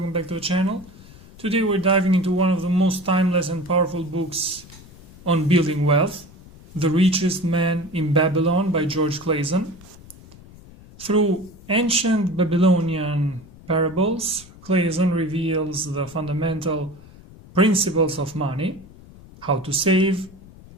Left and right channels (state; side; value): noise; left; rumble, 21 dB below the sound